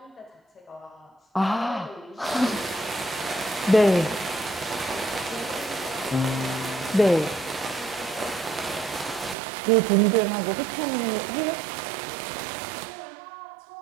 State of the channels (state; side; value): drops out; left; at 9.3 s